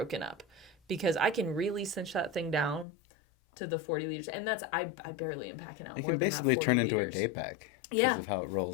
up? Because I can really cinch that thing down to the 40 liters. And that's, I barely am packing out more than that 40 liters. It can basically turn into a day pack. Yeah. Because of how it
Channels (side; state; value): right; drops out; at 2.9 s